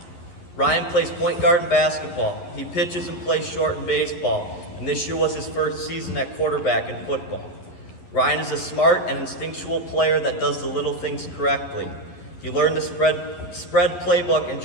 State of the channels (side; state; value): right; late; 12 ms